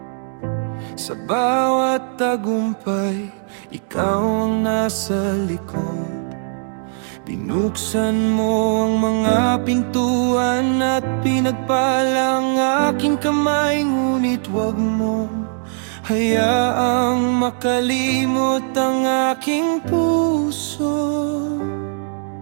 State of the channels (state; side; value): silent; left; digital silence